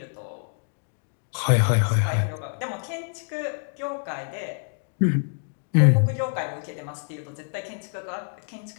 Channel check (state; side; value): silent; right; digital silence